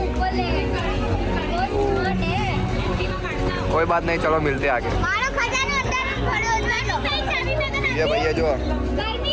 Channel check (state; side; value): identical; both; correlation 1.00